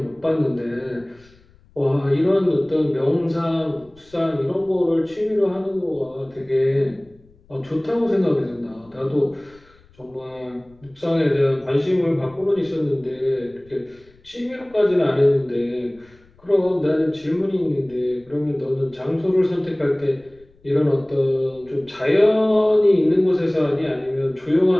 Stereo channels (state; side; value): noise; left; rumble, 29 dB below the sound